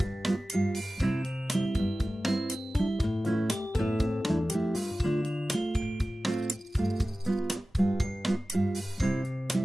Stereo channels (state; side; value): normal; both; correlation 0.96